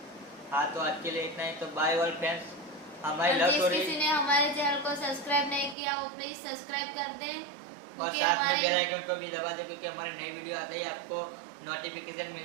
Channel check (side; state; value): left; drops out; at 5.8 s